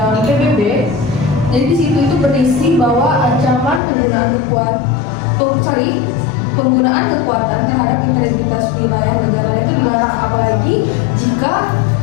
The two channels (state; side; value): drops out; right; at 3.8 s